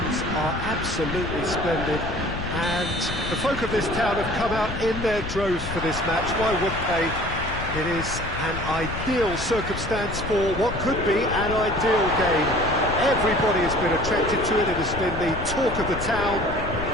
are absolutely splendid and the folk of this town have come out in their droves for this match. Why wouldn't they? It is an ideal circumstance for what could be an ideal game. Everybody has been attracted to it. It has been the talk of the town.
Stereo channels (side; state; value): left; noise; rumble, 8 dB below the sound